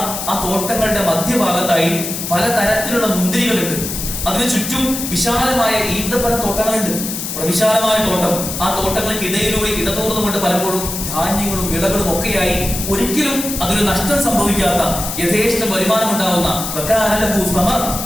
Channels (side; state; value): left; noise; hiss, 5 dB below the sound